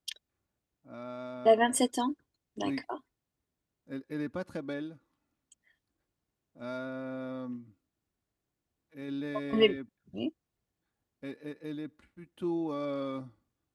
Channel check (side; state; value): both; identical; correlation 1.00